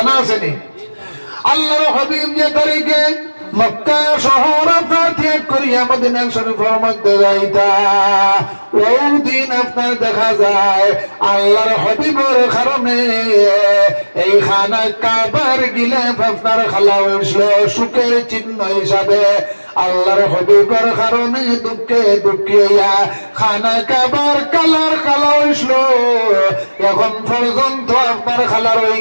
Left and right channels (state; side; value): inverted; both; correlation -1.00